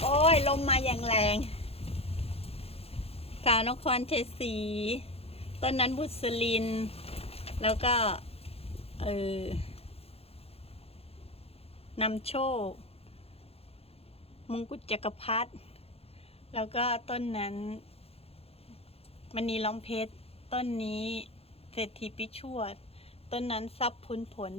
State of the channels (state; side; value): late; right; 0.29 ms